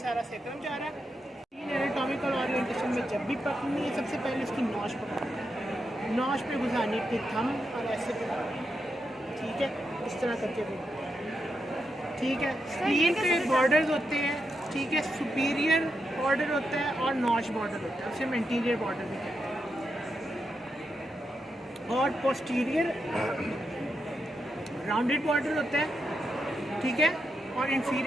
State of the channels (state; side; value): normal; both; correlation 0.85